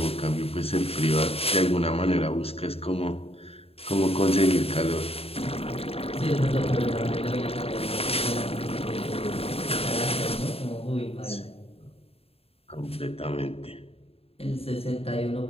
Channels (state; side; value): late; right; 0.28 ms